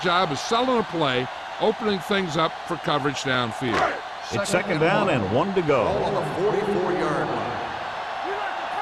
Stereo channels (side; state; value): both; identical; correlation 1.00